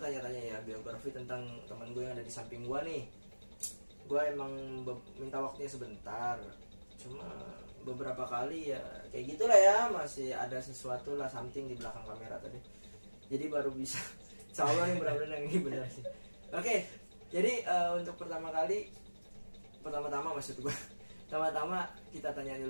ya biografi tentang teman gue yang ada di samping gua nih. Gua emang minta waktunya sebentar, cuma beberapa kali ya kayak gitulah ya, masih ada sesuatu lah something di belakang kamera tadi, jadi baru bisa insya Allah nih benar-benar yang ini benar sih. Oke, jadi untuk pertama-tama maksud gue pertama-tama kita tanya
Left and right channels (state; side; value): inverted; both; correlation -1.00